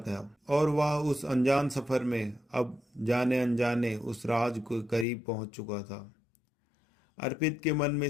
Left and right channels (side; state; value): right; drops out; at 5.1 s